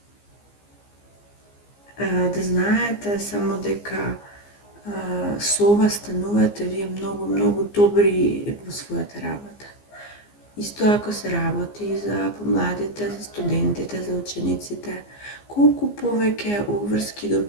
да знаете само дека со ова станувате вие многу добри во својата работа. Исто ако се работи за помладите, за студентите, за учениците, колку повеќе обврски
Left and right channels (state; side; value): late; right; 15 ms